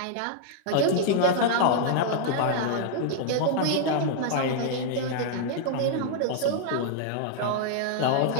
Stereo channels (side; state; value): both; different; correlation 0.00